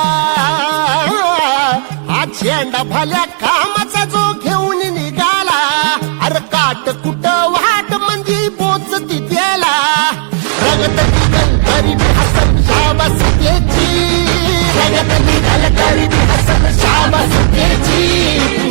हा झेंडा भल्या कामाचा जो घेऊन निघाला, अरे काट कुट वाट म्हणजे पोचती त्याला, रगत निघल तरी बी हसल शाबास त्याची, रगत निघल तरी बी हसल शाबास त्याची.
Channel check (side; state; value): left; silent; 60 dB below the other